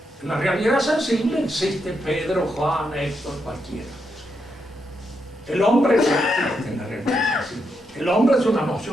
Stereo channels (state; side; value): normal; both; correlation 0.82